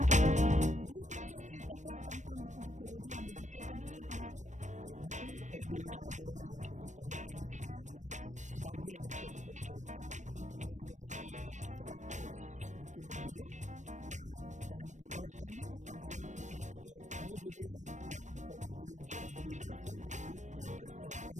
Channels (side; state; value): left; late; 0.35 ms